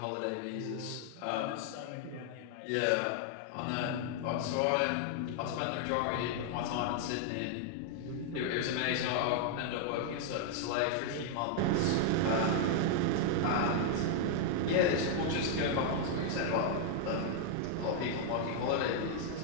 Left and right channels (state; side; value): different; both; correlation 0.00